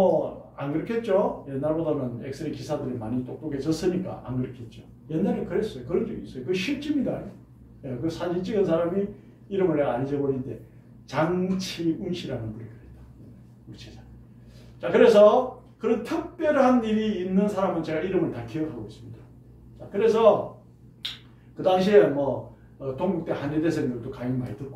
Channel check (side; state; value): both; identical; correlation 1.00